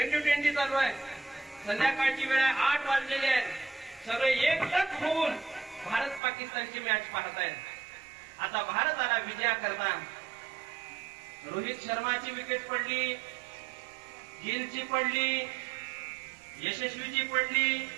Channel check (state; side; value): drops out; left; at 6.2 s